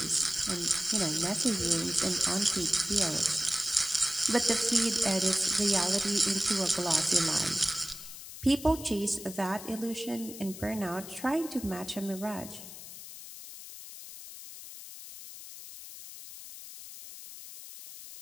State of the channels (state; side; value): noise; left; hiss, 13 dB below the sound